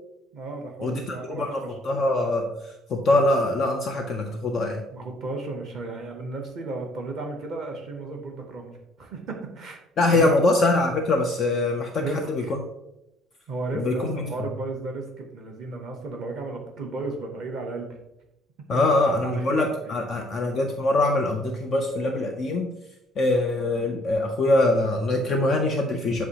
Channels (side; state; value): both; normal; correlation 0.62